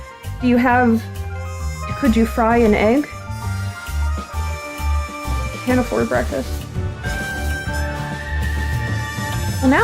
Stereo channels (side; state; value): both; identical; correlation 1.00